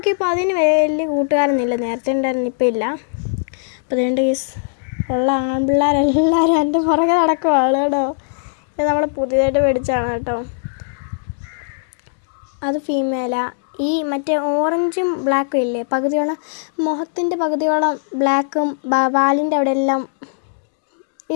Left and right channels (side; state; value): right; silent; digital silence